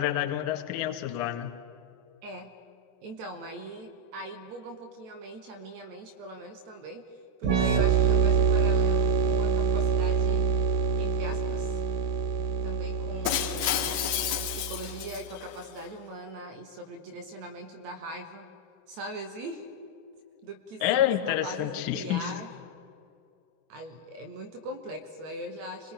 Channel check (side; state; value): left; late; 8.9 ms